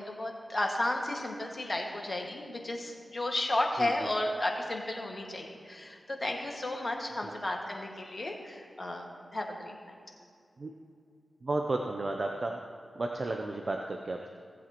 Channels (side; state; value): both; normal; correlation 0.94